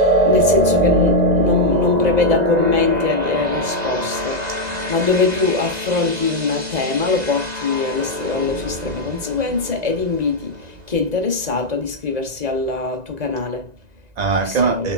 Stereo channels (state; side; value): late; left; 1.9 ms